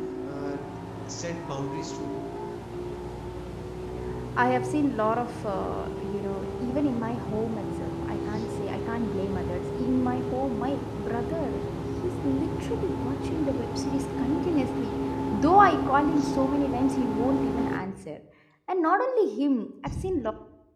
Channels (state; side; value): identical; both; correlation 1.00